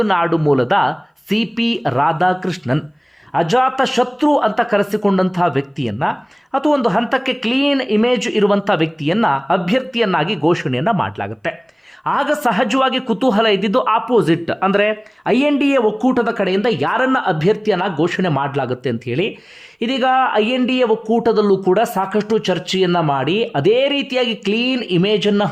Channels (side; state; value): both; identical; correlation 1.00